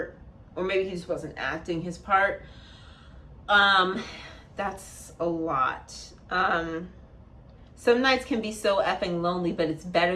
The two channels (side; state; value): both; identical; correlation 1.00